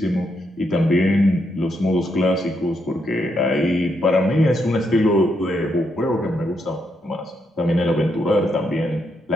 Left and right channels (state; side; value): normal; both; correlation 0.79